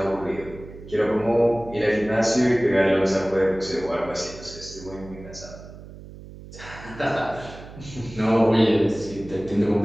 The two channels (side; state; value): right; noise; hum, 16 dB below the sound